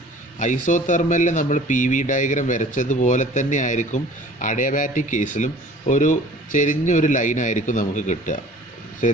ഐസോതെർമലിൽ നമ്മൾ PV ഡയഗ്രാം വരച്ചതുപോലെ തന്നെ ആയിരിക്കും അഡിയബാറ്റിക് കേസിലും ഒരു ചെരിഞ്ഞൊരു ലൈനായിരിക്കും നമുക്ക് കിട്ടുക. Say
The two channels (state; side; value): normal; both; correlation 0.48